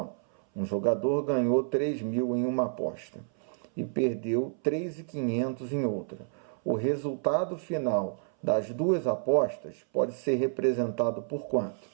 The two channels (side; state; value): left; silent; 58 dB below the other